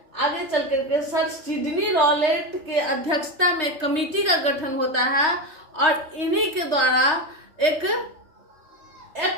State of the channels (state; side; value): late; left; 3.2 ms